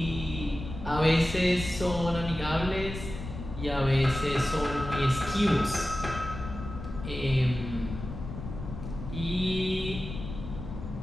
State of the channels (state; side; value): noise; left; rumble, 9 dB below the sound